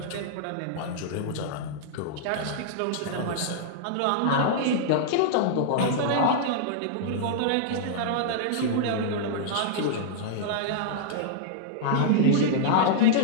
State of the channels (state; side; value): different; both; correlation -0.02